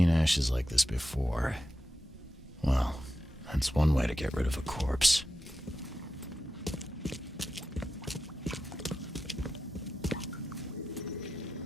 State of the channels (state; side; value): normal; both; correlation 0.90